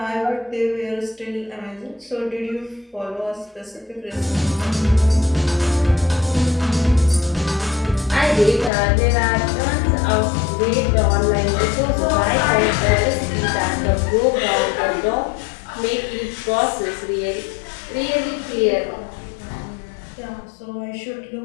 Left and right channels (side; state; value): right; drops out; at 8.7 s